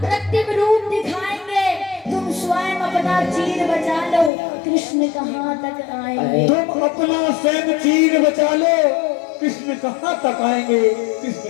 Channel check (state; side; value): drops out; right; at 4.3 s